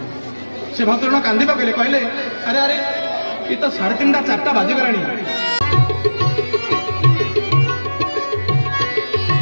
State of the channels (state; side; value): inverted; both; correlation -1.00